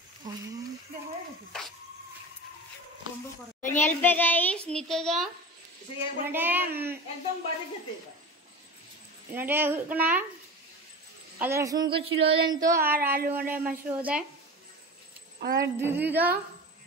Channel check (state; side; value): normal; both; correlation 0.30